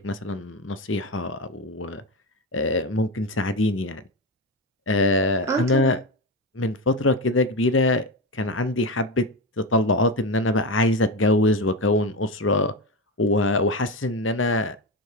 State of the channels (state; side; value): normal; both; correlation 0.17